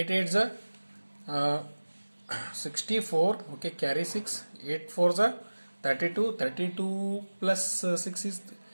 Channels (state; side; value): inverted; both; correlation -1.00